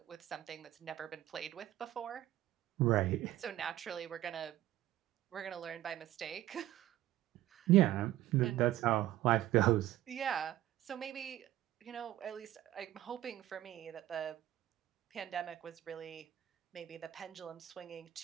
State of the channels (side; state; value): left; quieter; 13.8 dB